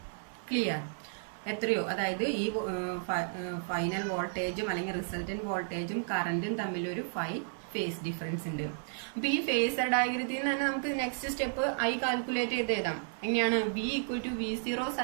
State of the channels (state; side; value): silent; left; 56 dB below the other